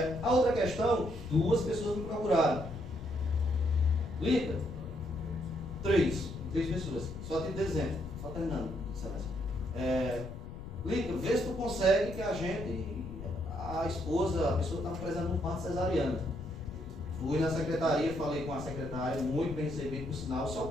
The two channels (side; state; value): left; noise; rumble, 11 dB below the sound